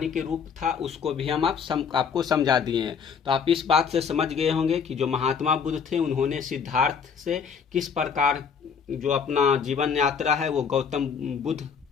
के रूप था उसको भी हम आपको समझा दिए हैं। तो आप इस बात से समझ गए होंगे कि जो महात्मा बुद्ध थे उन्होंने सिद्धार्थ से किस प्रकार जो अपना जीवन यात्रा है वो गौतम बुद्ध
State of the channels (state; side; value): quieter; right; 6.5 dB